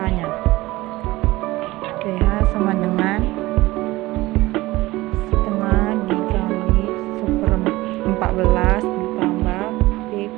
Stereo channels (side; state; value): left; quieter; 19.0 dB